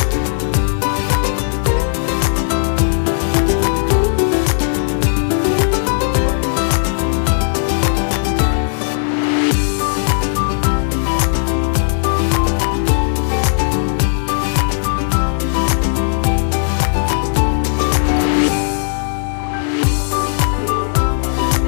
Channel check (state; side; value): silent; right; digital silence